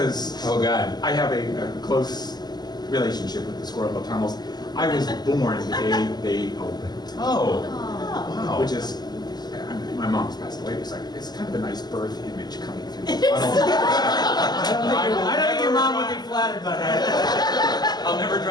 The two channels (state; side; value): late; right; 0.20 ms